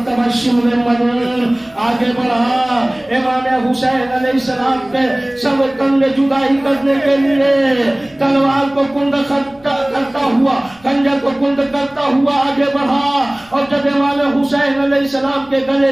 शिमले मदन आगे बढ़ा। इमाम हुसैन अलैहिस्सलाम के सब कंधे जुदाई करने के लिए तलवार को कुंद करता हुआ, खंजर को कुंद करता हुआ आगे बढ़ा। और जब इमाम हुसैन अलैहिस्सलाम के गले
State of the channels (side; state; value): left; noise; rumble, 28 dB below the sound